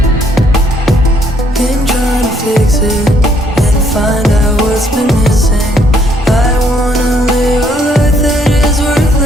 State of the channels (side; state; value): both; normal; correlation 0.68